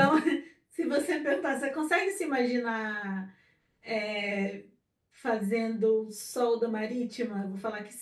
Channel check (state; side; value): identical; both; correlation 1.00